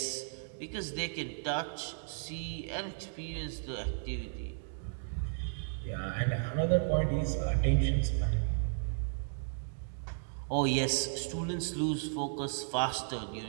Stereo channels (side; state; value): left; silent; digital silence